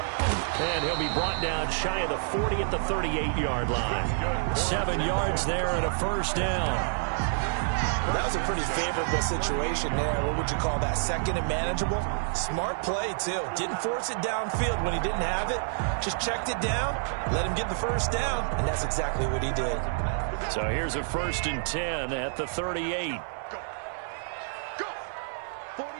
And he'll be brought down shy of the 40 at the 38-yard line. 7 yards there and a first down. Well, that was a pretty favorable situation there. What would you call that? 2nd and manageable? Smart play, too. Didn't force it downfield when he didn't have it. Just checked it down, let him get the first down, and that's exactly what he did. So here's a 1st and 10 at the 38.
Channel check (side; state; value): left; silent; digital silence